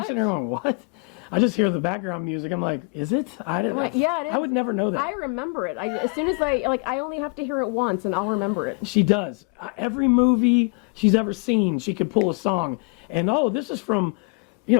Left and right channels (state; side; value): quieter; right; 37.0 dB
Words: sitting there going, "What?" I just hear the background music. I'm like, "Is it?" I didn't. Like, yeah, it is. I would never know that. I remember it. As soon as I only have to hear it once, and I'll remember it. She does. Every movie she's ever seen, she could pull a song, and this is from,